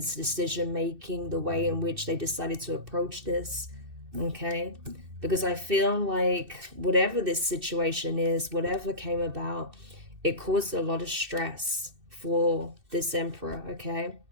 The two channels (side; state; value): left; late; 2.6 ms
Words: decision making, the way in which they decided to approach this, okay? Because I feel like whatever this situation is, whatever came about, it caused a lot of stress for this Emperor, okay?